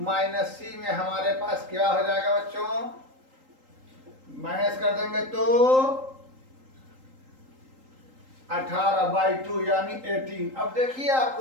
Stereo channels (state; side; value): late; left; 3.8 ms